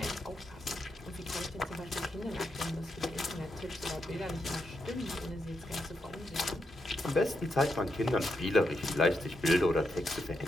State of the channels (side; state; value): both; normal; correlation 0.83